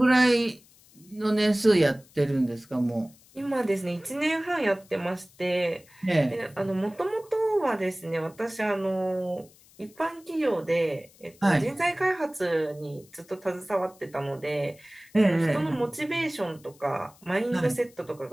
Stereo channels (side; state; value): left; noise; hiss, 27 dB below the sound